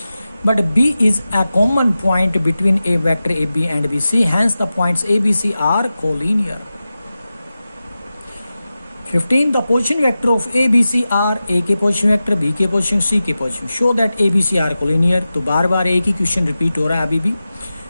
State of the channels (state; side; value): inverted; both; correlation -0.94